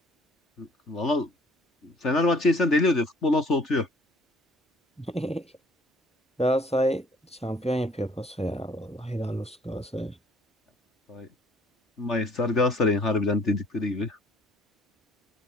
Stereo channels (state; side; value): normal; both; correlation 0.57